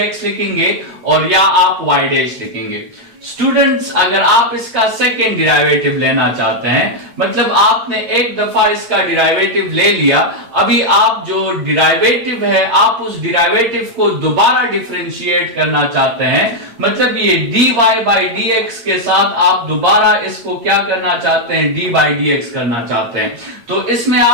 लिखेंगे और या आप y डैश लिखेंगे। स्टूडेंट्स, अगर आप इसका सेकेंड डिराइवेटिव लेना चाहते हैं, मतलब आपने एक दफा इसका डिराइवेटिव ले लिया, अभी आप जो डिराइवेटिव है आप उस डिराइवेटिव को दोबारा डिफरेंशिएट करना चाहते हैं, मतलब ये dy बाई डी एक्स के साथ आप दोबारा इसको क्या करना चाहते हैं, d बाई डी एक्स करना चाहते हैं। तो इसमें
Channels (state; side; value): late; left; 8.6 ms